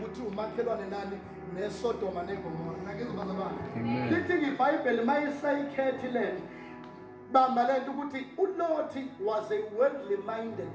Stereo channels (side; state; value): both; identical; correlation 1.00